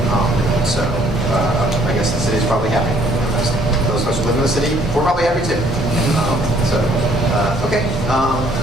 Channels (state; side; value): normal; both; correlation 0.62